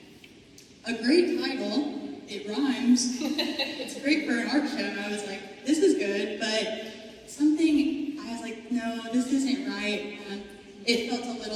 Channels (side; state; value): both; identical; correlation 1.00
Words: A great title, it rhymes, it's great for an art show, and I was like, this is good, but I was like, no, this isn't right, and it felt a